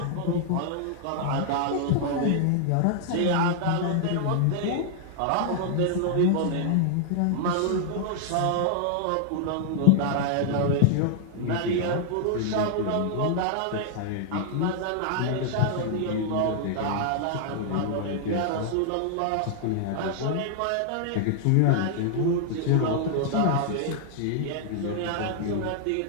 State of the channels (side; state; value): both; different; correlation -0.01